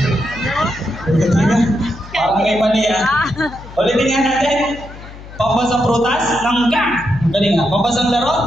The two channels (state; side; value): noise; left; hum, 16 dB below the sound